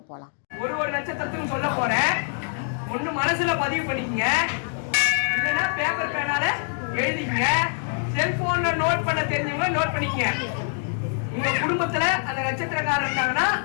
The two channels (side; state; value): right; silent; 62 dB below the other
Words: போகலாம். ஒரு நட்சத்திரத்துக்கும் சொல்ல போகிறேன். ஒன்று மனசில் பதிவு பண்ணிக்கங்க, இல்லைன்னா பேப்பர் பேனால எழுதிங்க, செல்ஃபோனில் நோட் பண்ண தெரிஞ்சவங்க நோட் பண்ணிக்கங்க. உங்கள் குடும்பத்தில் அந்த நட்சத்திரக்காரர் இருந்தாங்கன்னா